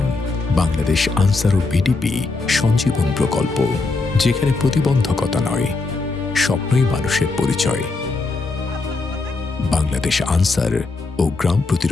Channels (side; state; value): right; quieter; 3.7 dB